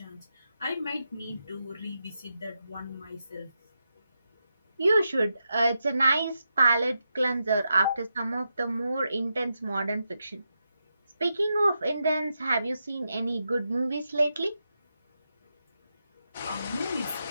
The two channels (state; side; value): inverted; both; correlation -0.86